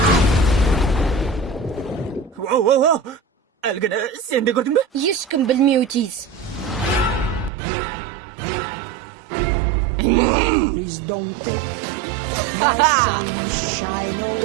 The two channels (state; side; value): drops out; left; at 7.5 s